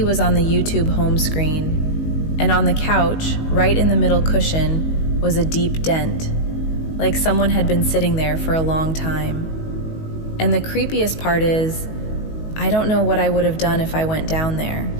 was on the YouTube home screen, and on the couch, right in the middle cushion, was a deep dent, like someone had been sitting there for a long time. And the creepiest part is, I don't know what I would have done if I went down there,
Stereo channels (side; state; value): right; late; 19 ms